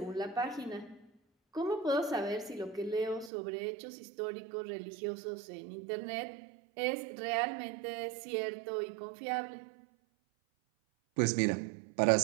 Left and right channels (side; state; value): left; drops out; at 3.3 s